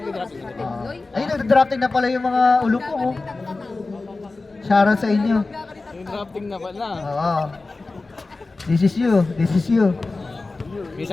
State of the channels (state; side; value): quieter; right; 3.5 dB